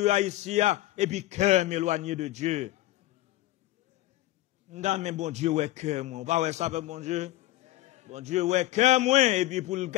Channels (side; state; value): right; quieter; 16.5 dB